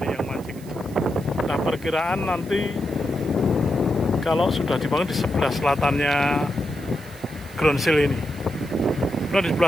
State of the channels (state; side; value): noise; right; hiss, 22 dB below the sound